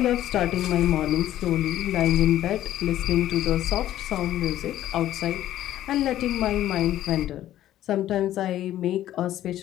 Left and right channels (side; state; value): right; quieter; 12.9 dB